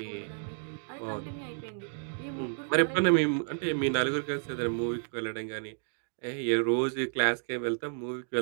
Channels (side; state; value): left; silent; digital silence